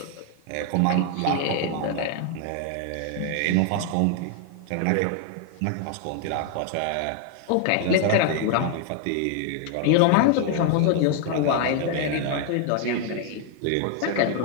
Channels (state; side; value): different; both; correlation 0.00